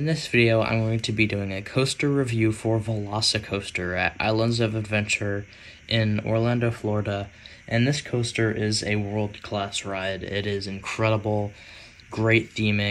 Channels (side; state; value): both; identical; correlation 1.00